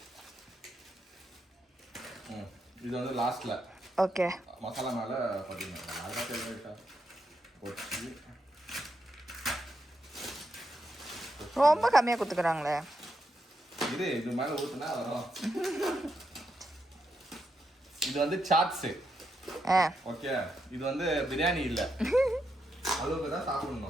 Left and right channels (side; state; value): both; normal; correlation 0.82